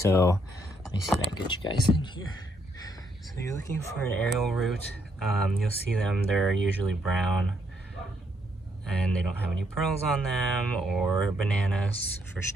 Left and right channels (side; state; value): both; normal; correlation 0.74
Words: let me see if I can get you guys in here. So you're looking for an aerial root. You'll see them, they're usually brown and they don't have any pearls on them or bananas for a